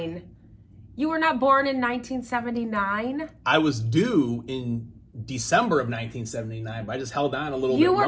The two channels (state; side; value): identical; both; correlation 1.00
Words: You were not born in 1979? I was due in December of 1979, but I just held on a little bit You